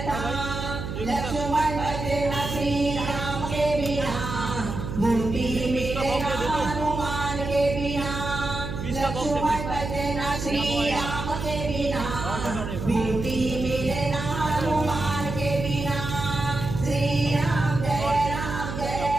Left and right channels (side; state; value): right; noise; hum, 6 dB below the sound